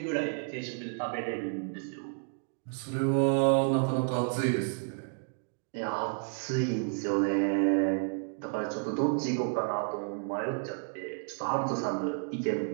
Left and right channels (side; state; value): left; silent; 57 dB below the other